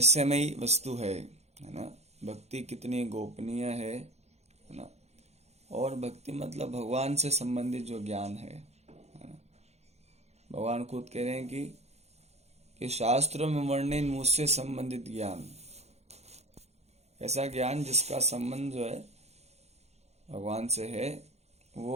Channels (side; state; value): left; late; 0.31 ms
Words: वस्तु है ना। भक्ति कितनी गोपनीय है ना। और भक्ति मतलब भगवान से संबंधित जो ज्ञान है ना। भगवान खुद कह रहे हैं कि शास्त्रों में वर्णित मुझसे संबंधित ज्ञान, ऐसा ज्ञान जिसका संबंध जो है भगवान से है,